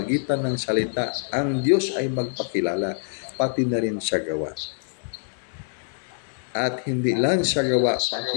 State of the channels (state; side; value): silent; right; digital silence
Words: ng salita, ang Diyos ay magpakilala, pati na rin sa gawa. At hindi lang sa gawa, pati